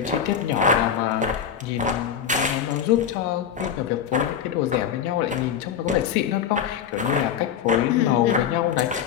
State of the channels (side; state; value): right; quieter; 8.3 dB